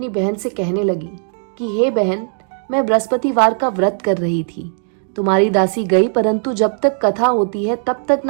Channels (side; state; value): left; silent; digital silence